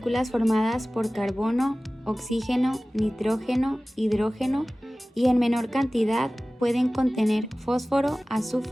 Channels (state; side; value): normal; both; correlation 0.97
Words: formadas por carbono, oxígeno, nitrógeno, hidrógeno y en menor cantidad pueden contener fósforo,